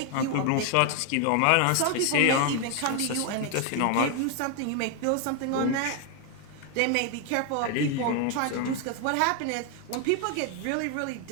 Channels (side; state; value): both; different; correlation 0.00